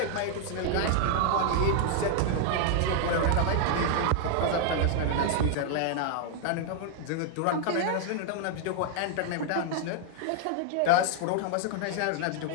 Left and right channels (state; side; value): different; both; correlation 0.00